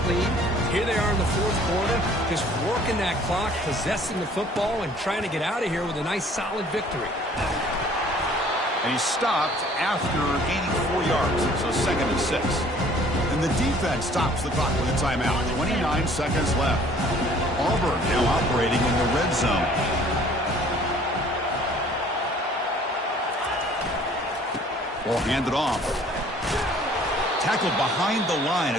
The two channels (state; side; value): normal; both; correlation 0.55